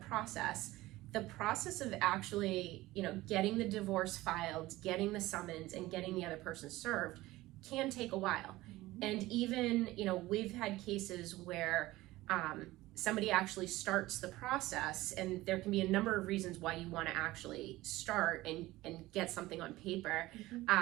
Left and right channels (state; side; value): quieter; left; 18.0 dB